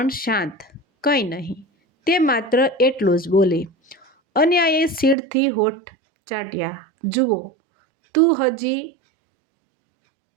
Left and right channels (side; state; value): left; drops out; at 5.2 s